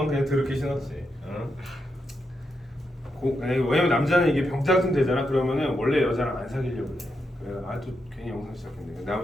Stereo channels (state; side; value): normal; both; correlation 0.84